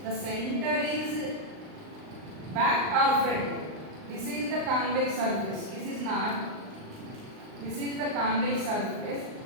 the center is back or front. This is the convex surface. This is not. This is the convex surface.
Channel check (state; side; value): late; left; 38 ms